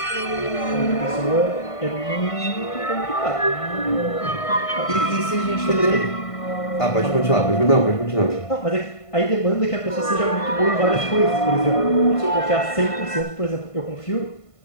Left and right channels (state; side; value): late; right; 1.5 ms